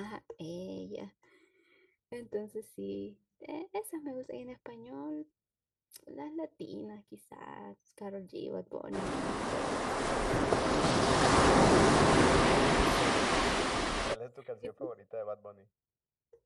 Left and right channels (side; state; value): both; identical; correlation 1.00